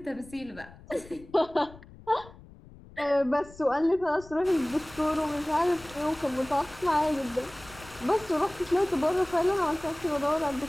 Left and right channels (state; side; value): noise; left; rumble, 20 dB below the sound